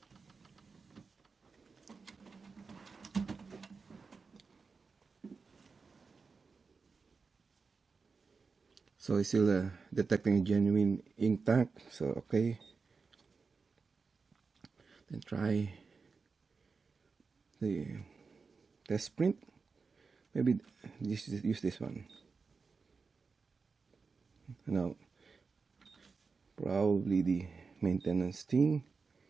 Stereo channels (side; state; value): left; quieter; 4.7 dB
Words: So it's still detecting a genuine ink tank, so okay. Then try the test print. Maybe use this one. Now, probably the maintenance thing,